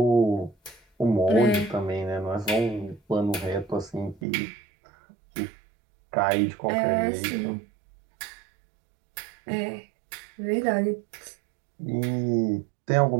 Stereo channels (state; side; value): drops out; left; at 4.2 s